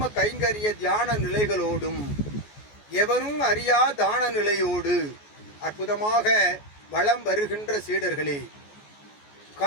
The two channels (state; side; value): late; right; 14 ms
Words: கைங்கரிய தியான நிலைகளோடும் எவரும் அறியா தான நிலையோடு அற்புதமாக வளம் வருகின்ற சீடர்களே,